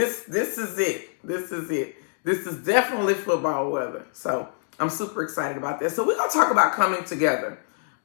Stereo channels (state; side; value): silent; right; 62 dB below the other